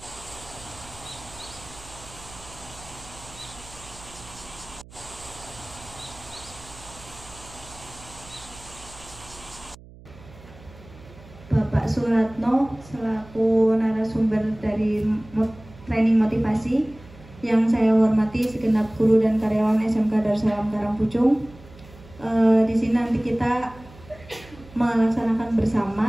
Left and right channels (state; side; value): noise; right; hum, 20 dB below the sound